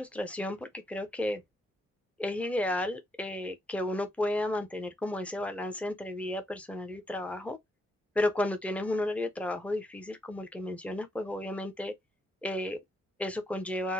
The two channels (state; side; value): normal; both; correlation 0.79